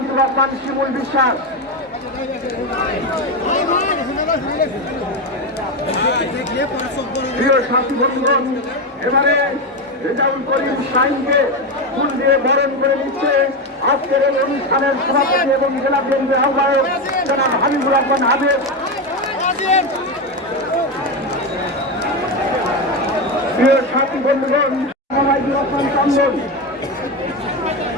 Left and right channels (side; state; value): both; normal; correlation 0.13